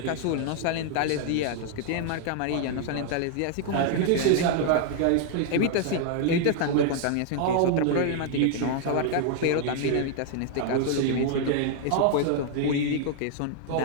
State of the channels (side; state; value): both; different; correlation 0.00